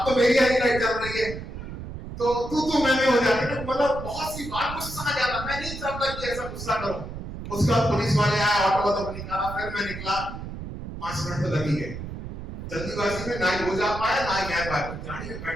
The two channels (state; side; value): noise; right; rumble, 9 dB below the sound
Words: तो मेरी हरी लाइट चल रही है, तो तू मैं हो जाती है। मतलब बहुत सी बार गुस्सा आ जाता। मैं नहीं चाहता कि ऐसा गुस्सा करूं। उसके बाद पुलिस वाले आए, ऑटो वाला को निकाला, फिर मैं निकला। 5 मिनट तो लग ही गए। जल्दीबाजी में ना ही हो जा पाया ना ही मैं पाया। गाड़ी में